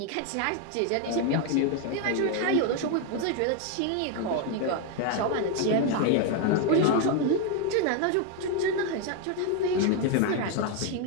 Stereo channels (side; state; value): both; different; correlation 0.01